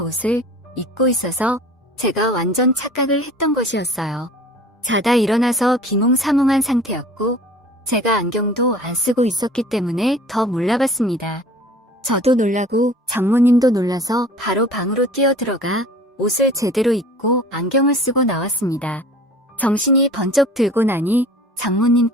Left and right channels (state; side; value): normal; both; correlation 0.45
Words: 입고 있어서 제가 완전 착각을 했던 것이었어요. 자다 일어나서 비몽사몽한 상태였고 제가 안경도 안 쓰고 있었기 때문에 더 몰라봤습니다. 저도 놀라고 장모님도 놀라서 바로 방으로 뛰어들어가 옷을 제대로 입고 안경을 쓰고 나왔습니다. 정신이 번쩍 들고 나니